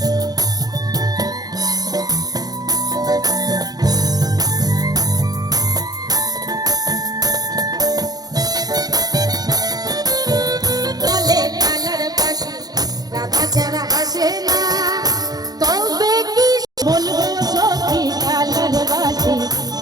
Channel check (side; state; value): left; late; 0.19 ms